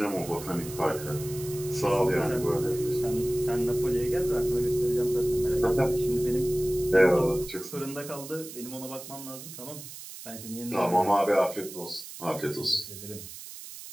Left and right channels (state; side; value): noise; right; hiss, 13 dB below the sound